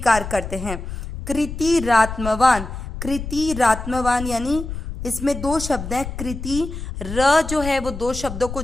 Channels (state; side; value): noise; left; rumble, 8 dB below the sound